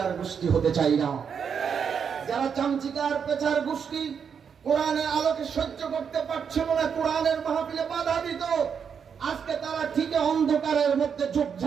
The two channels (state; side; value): quieter; left; 6.9 dB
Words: গোষ্ঠী হতে চাই না। যারা চামচিকার পেঁচার গোষ্ঠী কোরআনের আলোকে সহ্য করতে পারছিল না, কোরআনের মাহফিলে বাধা দিত, আজকে তারা ঠিক অন্ধকারের মধ্যে